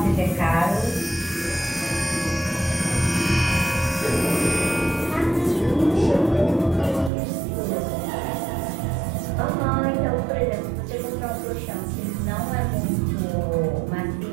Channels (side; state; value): left; drops out; at 7.1 s